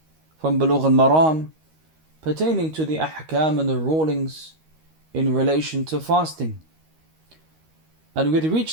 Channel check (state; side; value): late; left; 13 ms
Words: from Bulugh and Maram pertaining to the ahkam and the rulings in relation to fasting. And we had